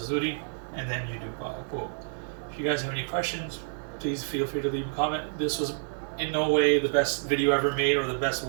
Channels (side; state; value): left; silent; 59 dB below the other